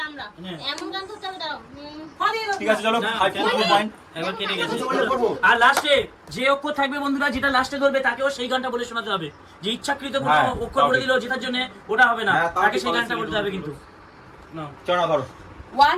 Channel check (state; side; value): identical; both; correlation 1.00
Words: আমরা হ্যাঁ। এমন গান করতে হবে দাঁড়াও ঠিক আছে চলো না, 5 পয়েন্ট এবার কেটে গেছে করবো আর লাস্টে যে অক্ষর থাকবে বন্ধুরা যেটা লাস্টে ধরবে তাকেও সেই গানটা বলে শোনাতে হবে যে ইচ্ছাকৃত কোনো হ্যাঁ, অক্ষর বলে তাও দিল জেতার জন্য ওটা হবে না হ্যাঁ, তাও তাকে ঠিক সেই গানটা বলেছিস। বলতে হবে কিন্তু না চলো না ধরো